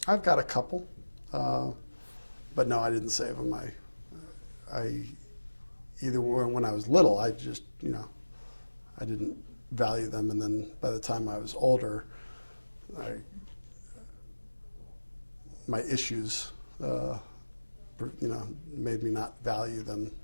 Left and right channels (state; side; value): inverted; both; correlation -1.00